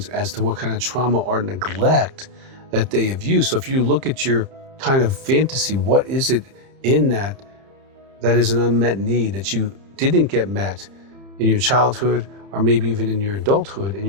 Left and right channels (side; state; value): left; late; 30 ms